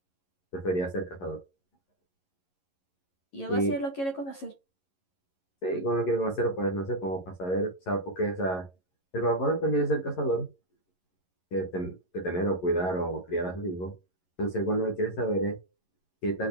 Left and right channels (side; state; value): right; late; 11 ms